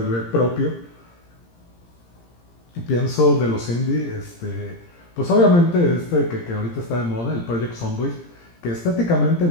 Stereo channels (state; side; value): late; right; 17 ms